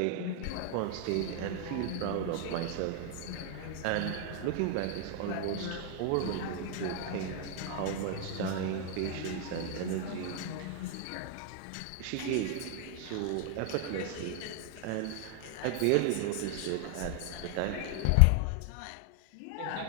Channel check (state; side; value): different; both; correlation 0.00